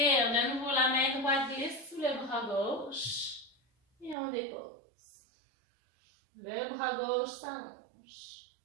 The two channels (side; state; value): left; drops out; at 4.2 s